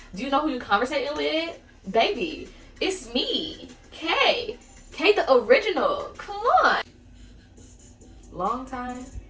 do you know who you're conversating with? Baby, it's me, Kayytheorginall. Come on. Long time,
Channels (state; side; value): identical; both; correlation 1.00